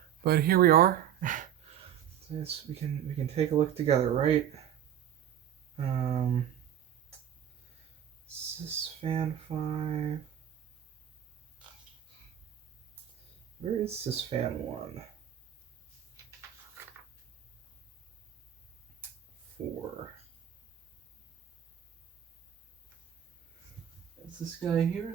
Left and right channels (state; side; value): quieter; left; 10.1 dB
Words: but here we are. So we can take a look together, right? Sysfan 5. Where is Sysfan 1? 4. Is this guy here?